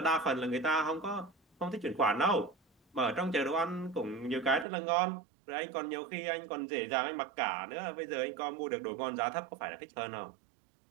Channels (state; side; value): drops out; left; at 4.7 s